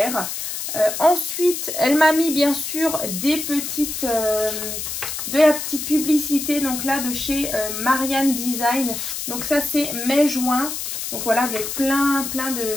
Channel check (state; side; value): noise; left; hiss, 5 dB below the sound